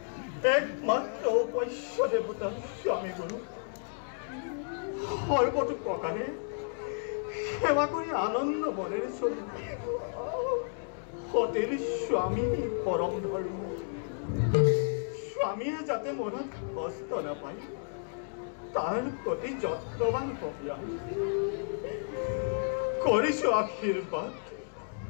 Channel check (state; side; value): silent; right; digital silence